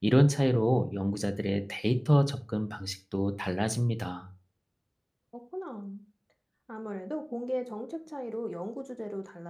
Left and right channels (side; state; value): both; identical; correlation 1.00